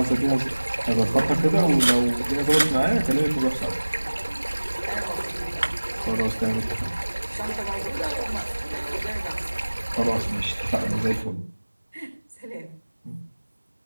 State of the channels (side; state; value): both; inverted; correlation -1.00